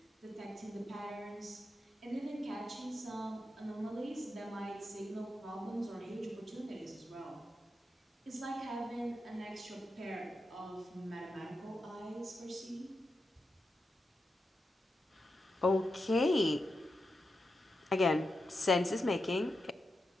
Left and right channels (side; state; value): both; normal; correlation 0.88